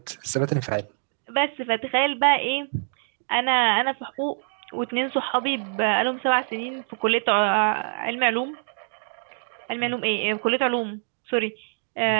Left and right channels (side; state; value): left; silent; digital silence